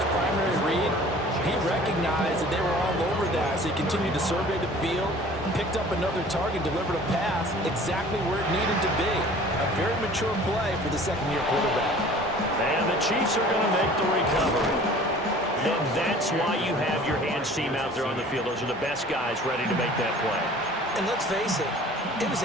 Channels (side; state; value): both; normal; correlation 0.47